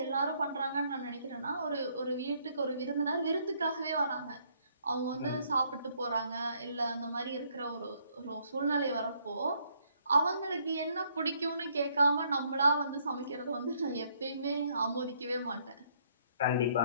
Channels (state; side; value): inverted; both; correlation -0.68